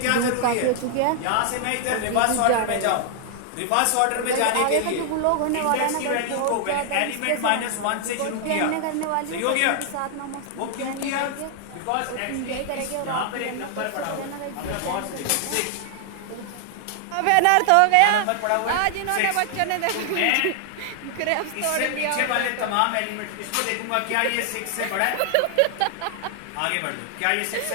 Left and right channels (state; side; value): different; both; correlation 0.00